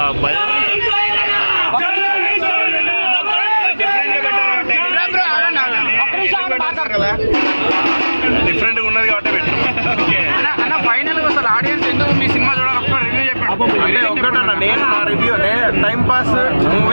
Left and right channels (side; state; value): both; inverted; correlation -1.00